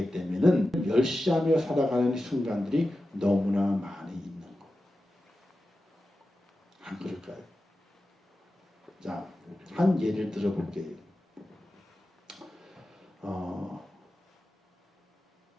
되면은 멸시하며 살아가는 순간들이 너무나 많이 있는 거예요. 안 그럴까요? 자, 한 예를 들어볼게요.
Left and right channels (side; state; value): both; normal; correlation 0.93